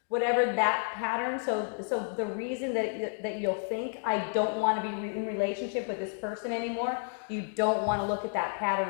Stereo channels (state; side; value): silent; right; 57 dB below the other